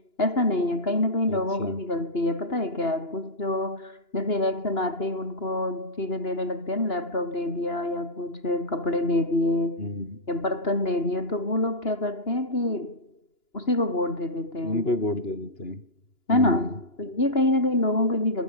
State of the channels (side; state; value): right; late; 2.9 ms